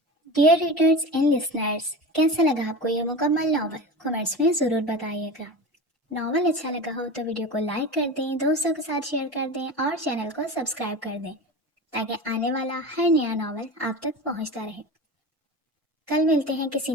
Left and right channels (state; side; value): normal; both; correlation 0.29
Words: ڈیئر ریڈرز اینڈ لسنرز، کیسا لگا آپ کو یہ مکمل ناول؟ کمنٹس میں ضرور بتائیے گا۔ ناول اچھا لگا ہو تو ویڈیو کو لائک کر دیں، دوستوں کے ساتھ شیئر کر دیں اور چینل کو سبسکرائب کر دیں تاکہ آنے والا ہر نیا ناول آپ تک پہنچتا رہے۔ کل ملتے ہیں کسی